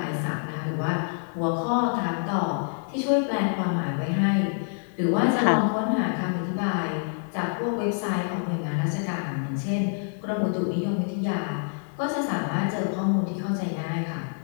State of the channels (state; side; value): silent; right; 60 dB below the other